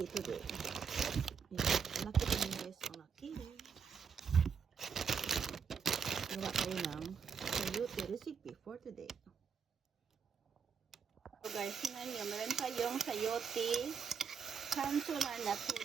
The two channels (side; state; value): left; quieter; 6.4 dB